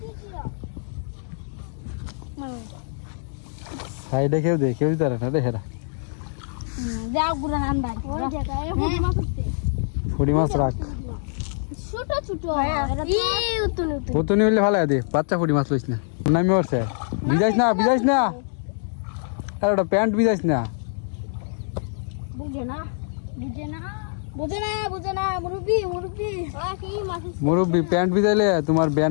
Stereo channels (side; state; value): right; silent; digital silence